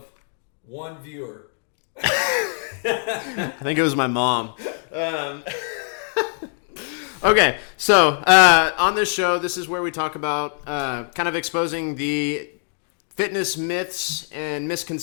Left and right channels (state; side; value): silent; right; 56 dB below the other